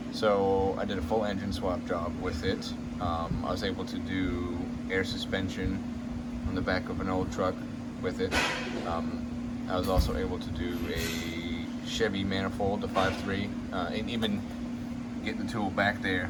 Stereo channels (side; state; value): both; identical; correlation 1.00